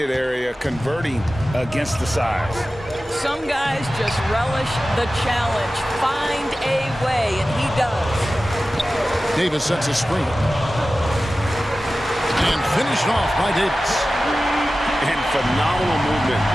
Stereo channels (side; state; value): both; normal; correlation 0.95